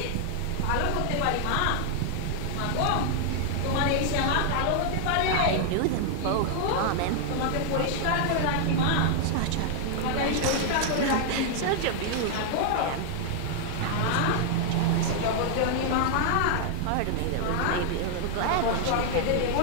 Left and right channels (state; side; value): different; both; correlation 0.00